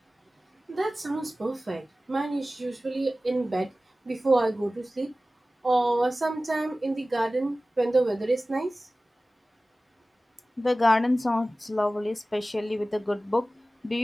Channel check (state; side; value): normal; both; correlation 0.97